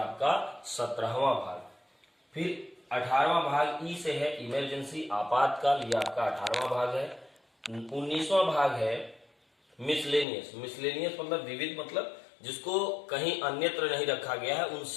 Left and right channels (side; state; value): right; drops out; at 10.2 s